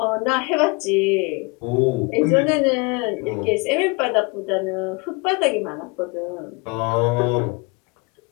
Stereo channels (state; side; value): quieter; right; 28.5 dB